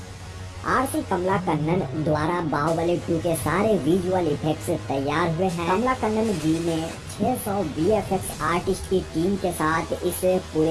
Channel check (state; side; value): identical; both; correlation 1.00